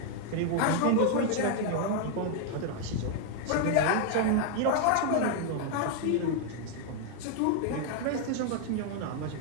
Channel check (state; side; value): different; both; correlation 0.00